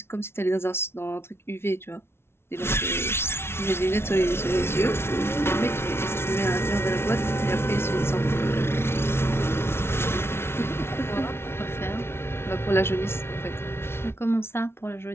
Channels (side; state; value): right; late; 0.12 ms